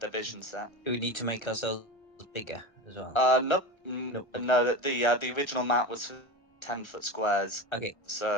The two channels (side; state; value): right; late; 1.3 ms